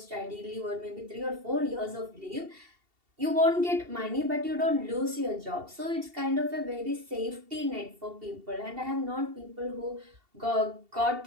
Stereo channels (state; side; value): late; left; 2.7 ms